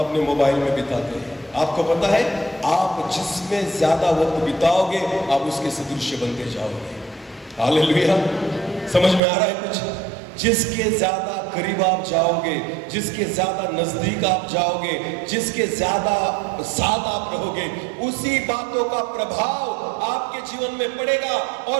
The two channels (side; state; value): left; drops out; at 9.2 s